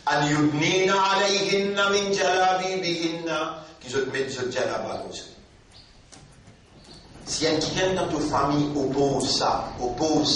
An yudnina alayhinna min jalabibihinna, qui se mettent ce jalaba comme ça. Si quelqu'un dans ta famille oppose ça,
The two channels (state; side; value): identical; both; correlation 1.00